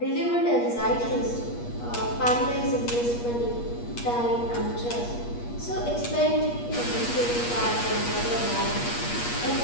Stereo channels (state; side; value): late; right; 8.4 ms